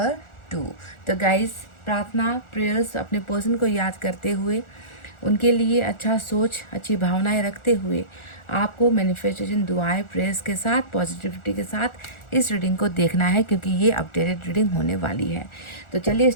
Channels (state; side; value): late; right; 1.4 ms